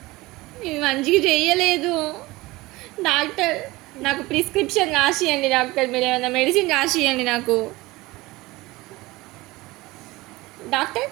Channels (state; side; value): quieter; left; 20.5 dB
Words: ఇది మంచిగా చెయ్యలేదు డాక్టర్. నాకు ప్రిస్క్రిప్షన్ రాసియండి డాక్టర్. మీరు ఏమైనా మెడిసిన్ రాసియండి నాకు డాక్టర్.